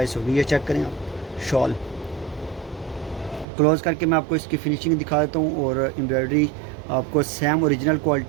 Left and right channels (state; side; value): drops out; left; at 3.5 s